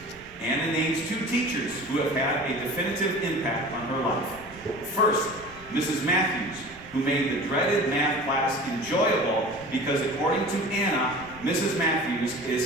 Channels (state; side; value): noise; right; rumble, 22 dB below the sound